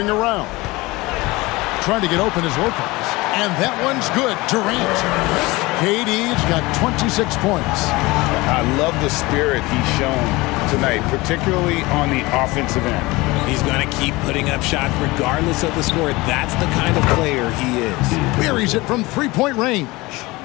around. Trying to get open is Lopez. And that one's good. Durant. KD's got 26 points. I love the spirit he's shown tonight, particularly on the offensive end. He's going to keep putting up shots regardless of the score. That's the kind of player he is. Buries it from 3-point range.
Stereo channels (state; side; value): quieter; right; 21.8 dB